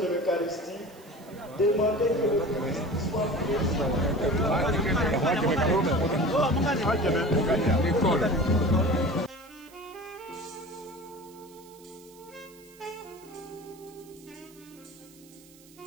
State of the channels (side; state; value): right; noise; hiss, 25 dB below the sound